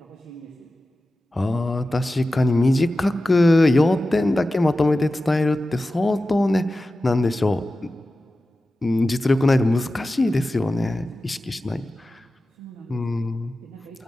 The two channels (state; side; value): normal; both; correlation 0.94